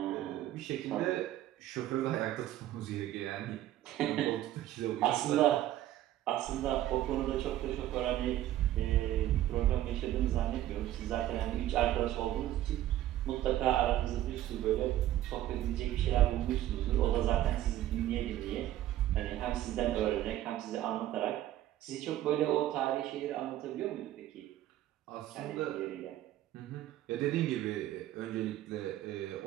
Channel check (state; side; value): quieter; left; 13.5 dB